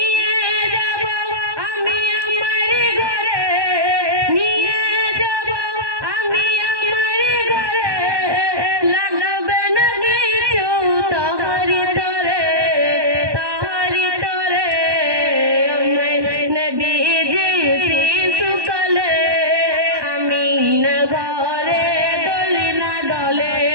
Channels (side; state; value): left; late; 1.2 ms